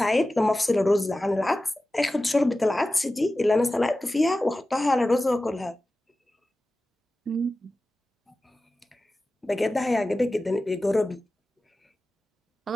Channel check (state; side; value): normal; both; correlation 0.95